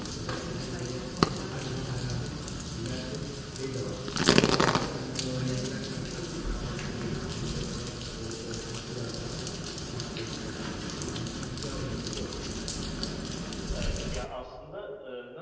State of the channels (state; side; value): identical; both; correlation 1.00